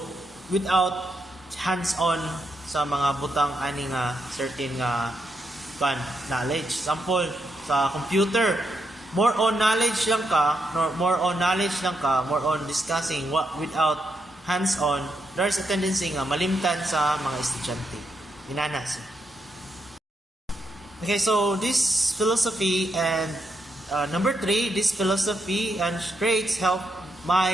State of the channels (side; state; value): both; normal; correlation 0.81